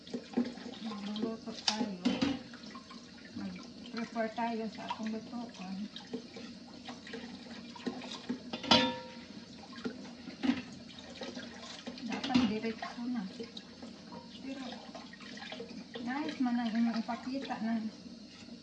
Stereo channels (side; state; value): both; identical; correlation 1.00